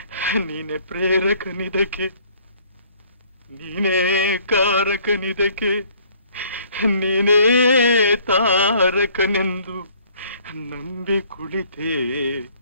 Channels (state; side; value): inverted; both; correlation -0.59